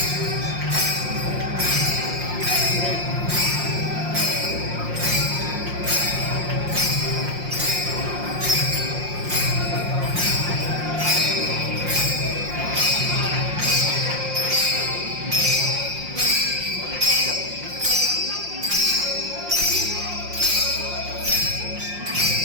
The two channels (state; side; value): late; left; 5.6 ms